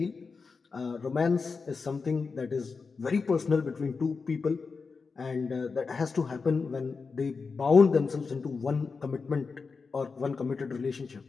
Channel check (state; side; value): quieter; right; 4.8 dB